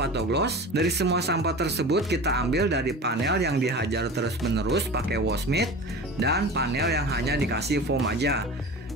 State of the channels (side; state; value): both; normal; correlation 0.34